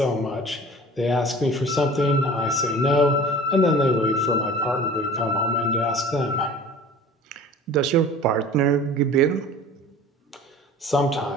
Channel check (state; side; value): normal; both; correlation 0.43